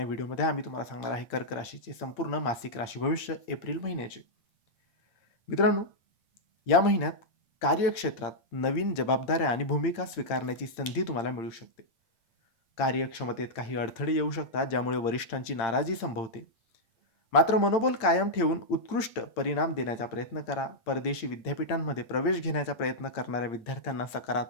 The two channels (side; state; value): right; late; 8.8 ms